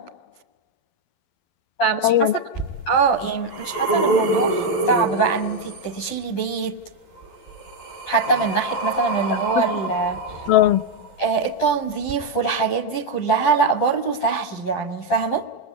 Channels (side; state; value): right; late; 11 ms